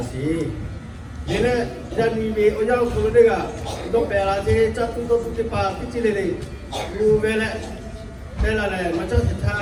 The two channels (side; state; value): both; identical; correlation 1.00